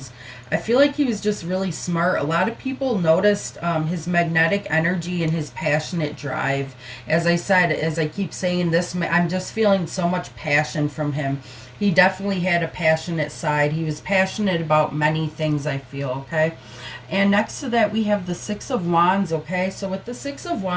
I feel like he was just really smart. A lot of people noticed his magnetic energy and his passionate drive. As I said, as I keep saying this, I'm just feeling so much passion from him. He definitely had a passionate side. He was passionate about many things, I feel, okay? And next to that, we have the Six of Wands, okay? So with the Six of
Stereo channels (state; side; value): identical; both; correlation 1.00